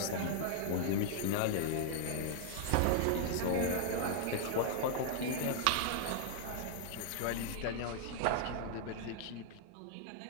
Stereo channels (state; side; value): different; both; correlation -0.01